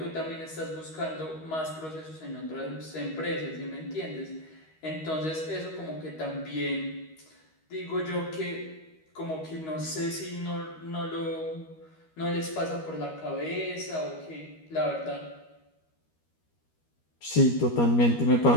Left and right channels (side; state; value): right; late; 13 ms